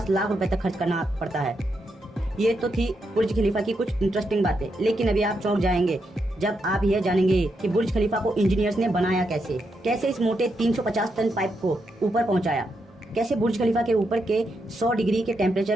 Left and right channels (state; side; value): normal; both; correlation 0.82